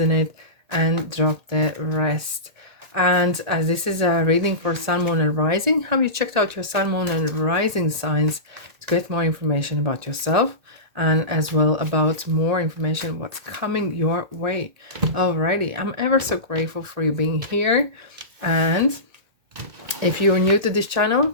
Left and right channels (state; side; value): late; left; 1.8 ms